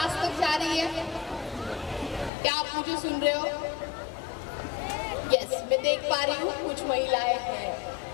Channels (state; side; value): drops out; right; at 2.3 s